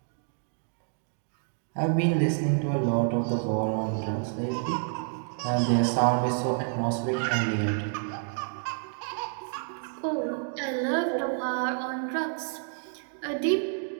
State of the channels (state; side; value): silent; left; 59 dB below the other